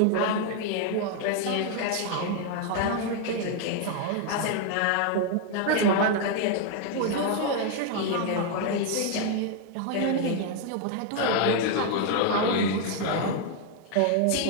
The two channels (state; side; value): different; both; correlation 0.00